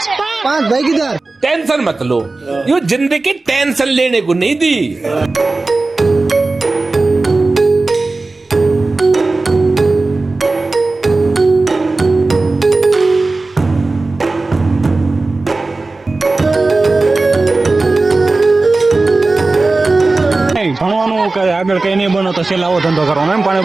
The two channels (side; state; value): left; quieter; 3.4 dB